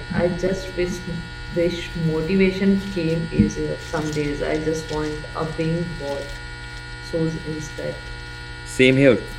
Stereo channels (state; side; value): identical; both; correlation 1.00